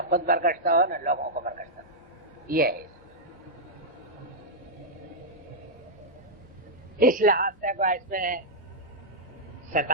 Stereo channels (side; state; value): both; normal; correlation -0.07